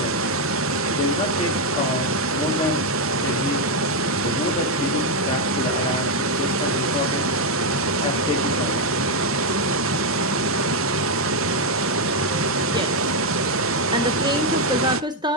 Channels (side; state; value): both; normal; correlation 0.03